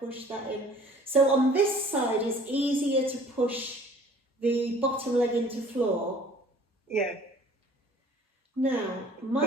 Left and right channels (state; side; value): normal; both; correlation 0.52